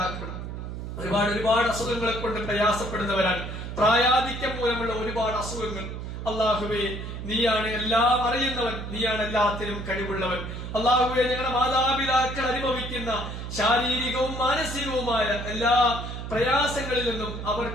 ഒരുപാട് അസുഖങ്ങളെ കൊണ്ട് പ്രയാസപ്പെടുന്നവരാണ്. പ്രായാധിക്യം മൂലമുള്ള ഒരുപാട് അസുഖങ്ങൾ. അള്ളാഹുവേ, നീയാണ് എല്ലാം അറിയുന്നവൻ, നീയാണ് എല്ലാത്തിനും കഴിവുള്ളവൻ. അള്ളാഹുവേ, ഞങ്ങളുടെ മാതാപിതാക്കൾ അനുഭവിക്കുന്ന ശാരീരികവും മാനസികവുമായ എല്ലാ പ്രയാസങ്ങളിൽ നിന്നും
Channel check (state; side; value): noise; right; hum, 7 dB below the sound